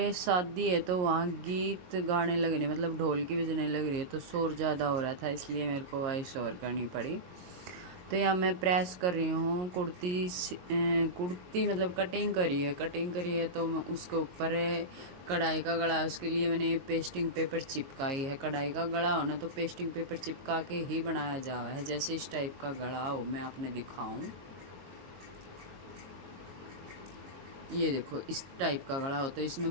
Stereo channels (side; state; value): left; late; 22 ms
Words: शादी है तो वहाँ गीत गाने लग रहे, मतलब ढोल की बजने लग रही है, तो शोर ज़्यादा हो रहा था, इसलिए मेरे को वॉइस ओवर करनी पड़ी। तो यहाँ मैं प्रेस कर रही हूँ कुर्ती, मतलब कटिंग करी है तो मैं उसके ऊपर कढ़ाई का गला, उसके लिए मैंने पेस्टिंग पेपर चिपकाई है। कढ़ाई का गला हो ना तो पेस्टिंग पेपर चिपका के ही बनाया जा रहा है। जैसे इस टाइप का गला हो, मैं आपने दिखाऊं, ये देखो इस टाइप का गला हो। तो